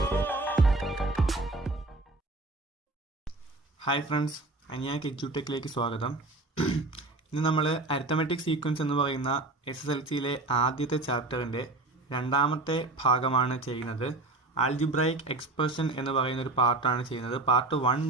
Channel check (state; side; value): quieter; left; 3.2 dB